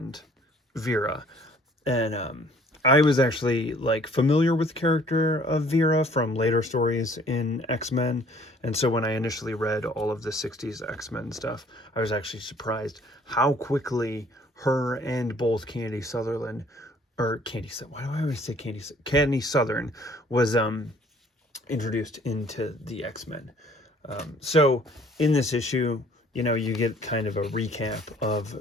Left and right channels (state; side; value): normal; both; correlation 0.57